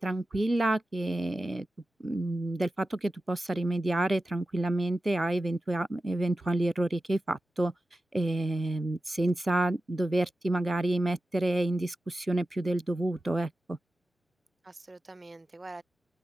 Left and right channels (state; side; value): normal; both; correlation 0.93